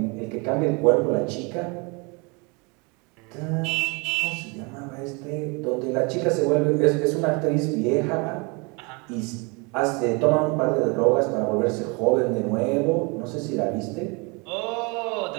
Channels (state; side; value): quieter; left; 30.0 dB